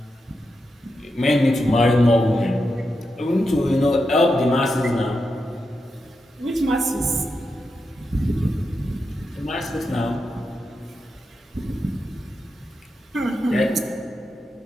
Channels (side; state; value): both; normal; correlation 0.87